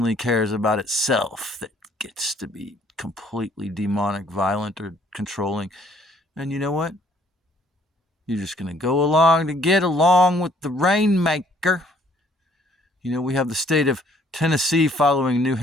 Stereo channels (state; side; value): normal; both; correlation 0.62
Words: cares about itself, that gets to be completely demonic, violent, or controlling. And you know what? You're just going to go along to get along with the rainmaker. You know, we have the state of Tennessee following New